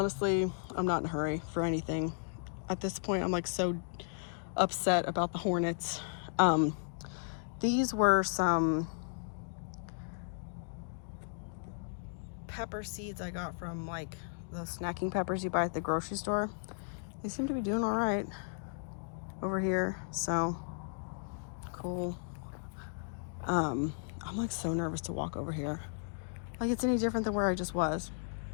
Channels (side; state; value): right; silent; digital silence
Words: I'm not in a hurry for anything. At this point, I'm like so upset about the hornets. These were some pepper seeds I got from like those snacking peppers you buy at the grocery store. They seem to be doing all right over here, so cool. I'm like so nervous to walk over here. Like it's any different than where I just was.